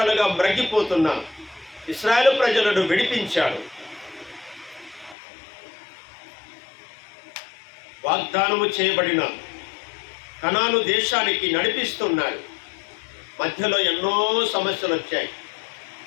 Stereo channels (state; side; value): drops out; right; at 5.2 s